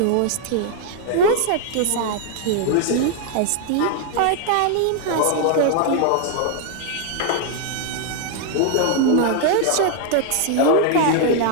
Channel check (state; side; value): different; both; correlation 0.00